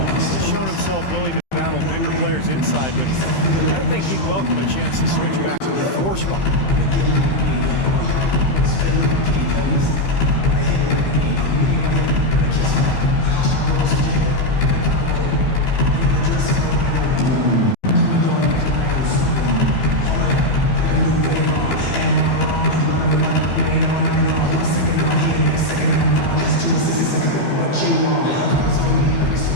He's shown himself willing to battle bigger players inside, but I don't think he'd welcome a chance to switch back to the 4 spot.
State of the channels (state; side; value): late; right; 15 ms